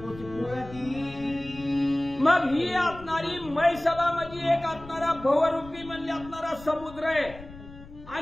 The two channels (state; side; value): noise; left; rumble, 17 dB below the sound